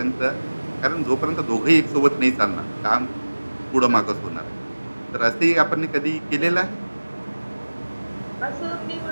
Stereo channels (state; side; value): inverted; both; correlation -1.00